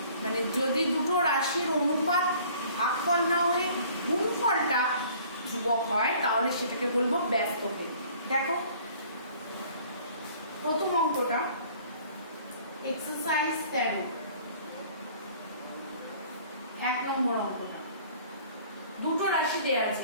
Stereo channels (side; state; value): both; inverted; correlation -0.52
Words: মানে যদি দুটো রাশির অনুপাত ভাগফল না হয়ে গুণফলটা ধ্রুবক হয়, তাহলে সেটাকে বলবো ব্যস্ত ভেদ। দেখো প্রথম অঙ্কটা, এক্সারসাইজ 13, 1 নম্বর অঙ্কটা। দুটো রাশি দেয়া